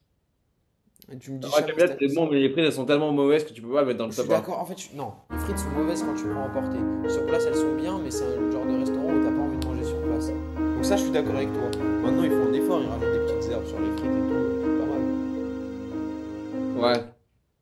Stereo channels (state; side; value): identical; both; correlation 1.00